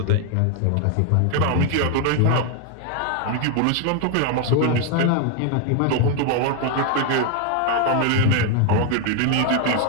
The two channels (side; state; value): both; different; correlation 0.01